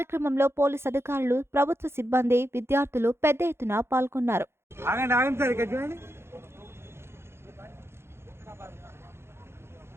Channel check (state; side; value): late; left; 0.12 ms